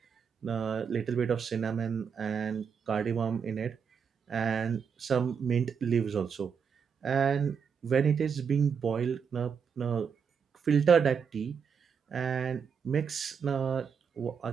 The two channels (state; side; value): quieter; left; 6.7 dB